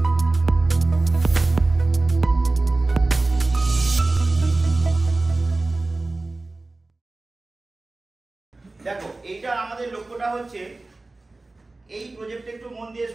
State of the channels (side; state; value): left; quieter; 3.2 dB